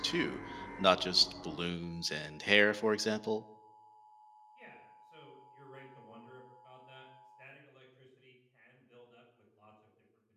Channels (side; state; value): both; identical; correlation 1.00